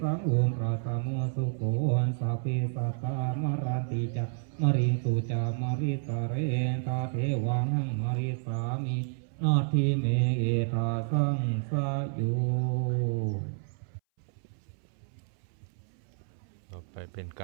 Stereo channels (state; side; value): silent; left; 58 dB below the other